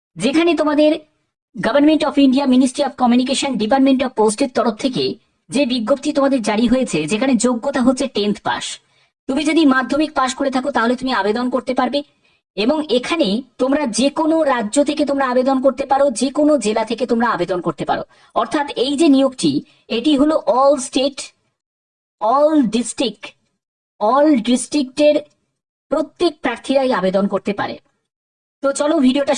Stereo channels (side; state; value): both; identical; correlation 1.00